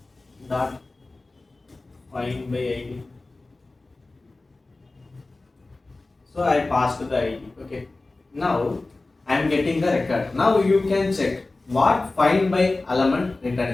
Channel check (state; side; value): quieter; right; 3.2 dB